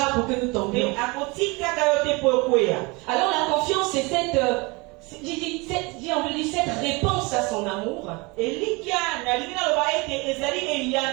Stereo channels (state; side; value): quieter; left; 26.6 dB